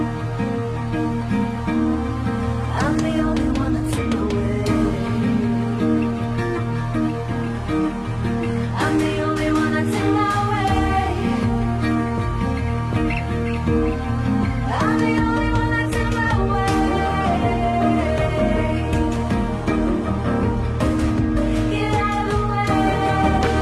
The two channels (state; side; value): identical; both; correlation 1.00